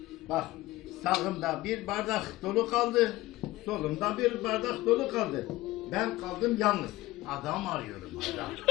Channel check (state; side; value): quieter; right; 18.2 dB